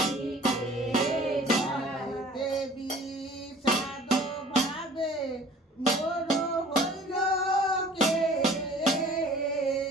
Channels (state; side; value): normal; both; correlation 0.49